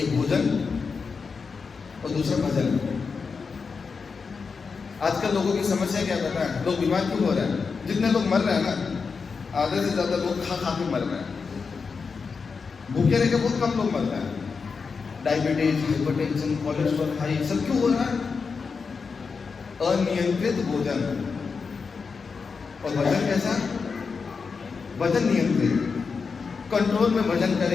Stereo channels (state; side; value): quieter; right; 5.2 dB